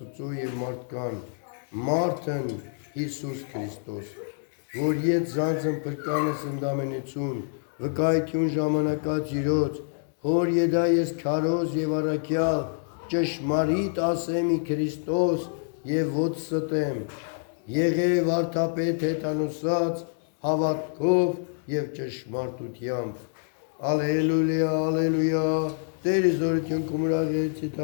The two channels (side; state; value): right; silent; digital silence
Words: և մարդկան, մարդն Հիսուս Քրիստոս, որ ետ զանձն պրկանս ընդամենություն, վկայություն ժամանակած իրոց, հոր եդա ես քարոզ և առաքյալ, ճշմարիտ ասեմի Քրիստոս և ոց ստեմ, եղև արդապետ հետանուսած, հավատքով և ճշմարտությամբ։ Ալելույա, ալելույա, Տերը զորություն կումրաղեցի